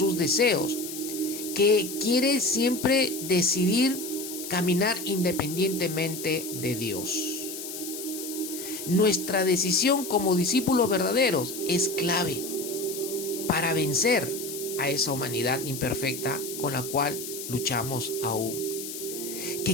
deseos, que quiere siempre decidir caminar independientemente de Dios. Nuestra decisión como discípulos verdaderos es clave para vencer a esa humanidad imperfecta con la cual luchamos aún,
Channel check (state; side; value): noise; left; hiss, 9 dB below the sound